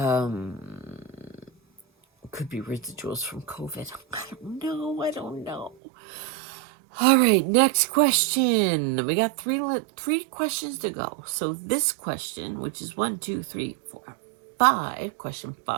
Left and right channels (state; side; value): drops out; left; at 5.8 s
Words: could be residuals from COVID. I don't know. I don't know. All right, next question. We got three questions to go. So this question, which is 1, 2, 3, 4, 5, question